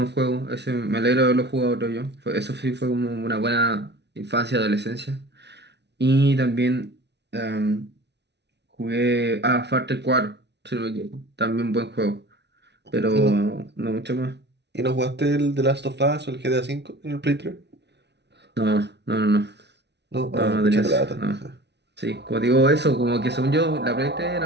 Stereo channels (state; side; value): late; left; 0.50 ms